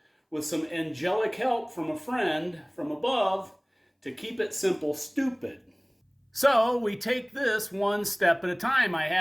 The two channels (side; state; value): both; identical; correlation 1.00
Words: with some angelic help from a friend from above, to keep it simple, stupid. So we take this one step at a time. I